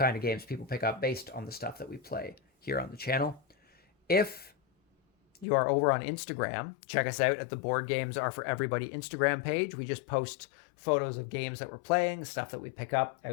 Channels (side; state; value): right; drops out; at 5.5 s